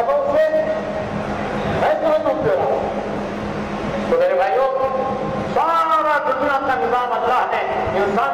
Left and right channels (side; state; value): both; identical; correlation 1.00